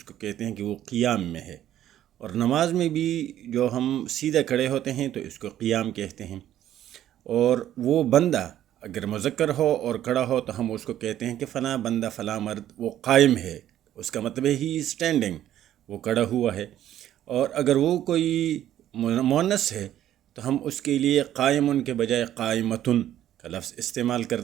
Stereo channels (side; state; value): left; quieter; 11.9 dB